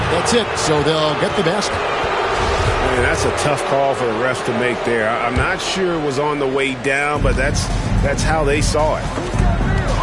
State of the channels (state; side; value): identical; both; correlation 1.00